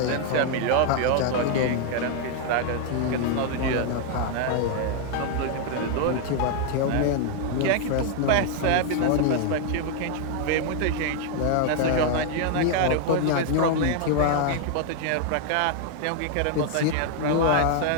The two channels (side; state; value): both; different; correlation 0.00